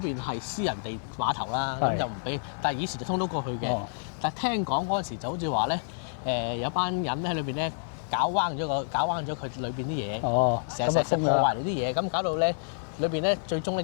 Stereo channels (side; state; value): right; silent; 59 dB below the other